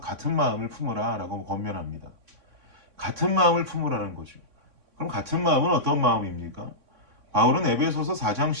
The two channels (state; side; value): late; left; 3.6 ms